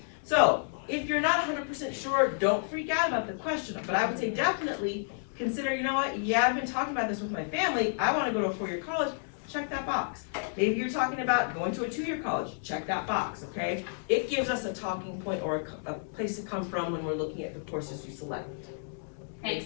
So, if you're not 100% sure, don't freak out about the question, but I would say definitely consider, you know what, yeah, I've been talking about this with my family, I wanna go to a 4-year college, check that box. Maybe you're talking about going to a 2-year college, check that box, okay? It gives us a talking point or a place to come from when we're looking at the courses you select. Make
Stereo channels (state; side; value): silent; right; digital silence